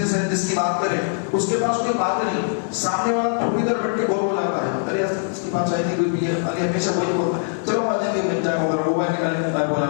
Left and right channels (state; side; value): silent; right; 64 dB below the other